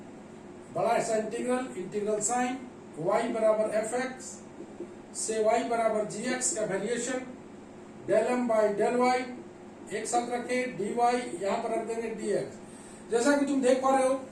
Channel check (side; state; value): both; identical; correlation 1.00